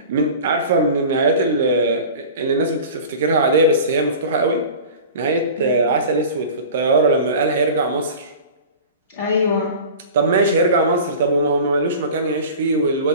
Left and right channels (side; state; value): both; inverted; correlation -0.37